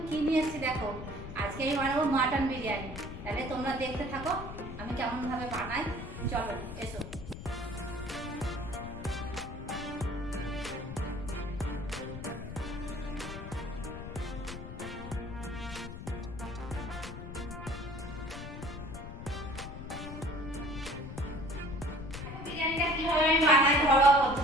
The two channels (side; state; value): left; noise; rumble, 9 dB below the sound